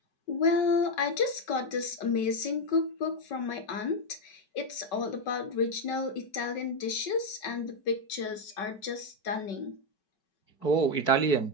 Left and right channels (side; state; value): right; late; 5.3 ms